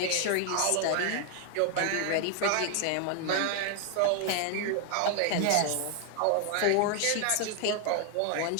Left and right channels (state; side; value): different; both; correlation 0.00